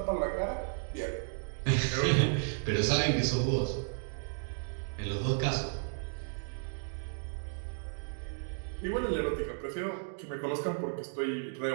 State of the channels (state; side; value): silent; left; digital silence